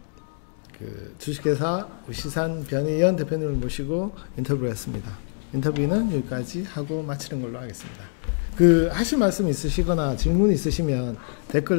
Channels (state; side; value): silent; right; digital silence